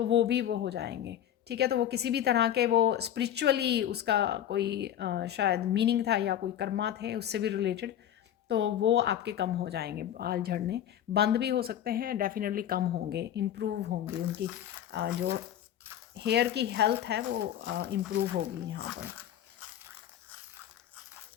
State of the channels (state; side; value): quieter; right; 10.7 dB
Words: वो हो जाएंगे। ठीक है, तो वो किसी भी तरह के, वो स्पिरिचुअली उसका कोई शायद मीनिंग था, या कोई कर्मा थे उससे भी रिलेटेड, तो वो आपके कम हो जाएंगे, बाल झड़ने बंद भी हो सकते हैं, डेफिनेटली कम होंगे, इम्प्रूव होंगी उनकी जो हेयर की हेल्थ है वो इम्प्रूव होगी यहाँ पर।